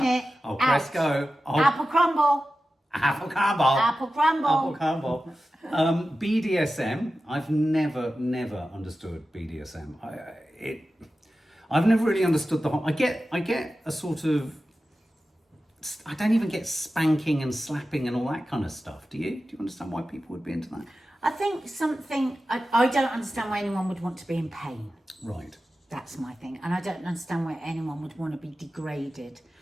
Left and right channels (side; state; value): both; normal; correlation 0.94